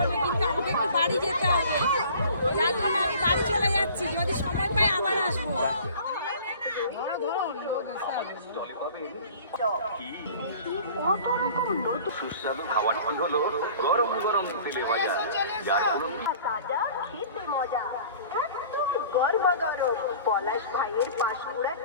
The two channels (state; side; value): inverted; both; correlation -0.46